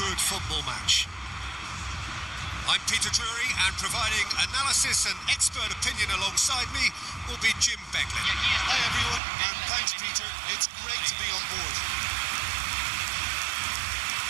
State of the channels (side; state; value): left; drops out; at 9.2 s